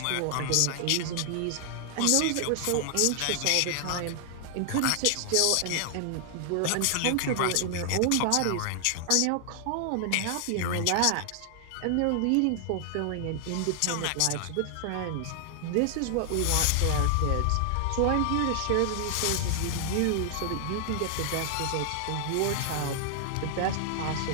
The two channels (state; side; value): different; both; correlation 0.00